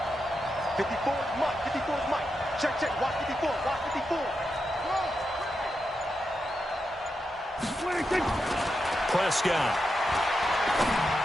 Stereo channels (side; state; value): both; normal; correlation 0.86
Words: 54 is Mike. 54 is Mike. Check. Watch 54. Watch 54. Prescott.